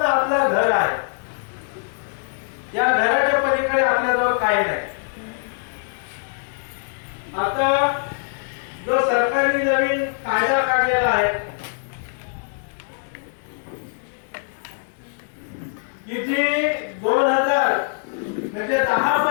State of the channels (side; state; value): right; silent; digital silence